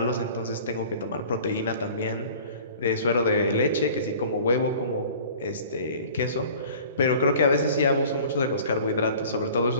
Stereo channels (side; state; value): both; inverted; correlation -0.45